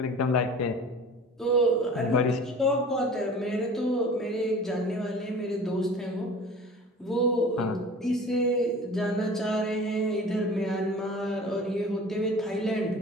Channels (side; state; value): both; normal; correlation 0.41